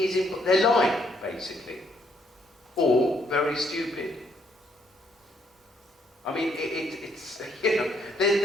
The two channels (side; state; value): both; normal; correlation 0.70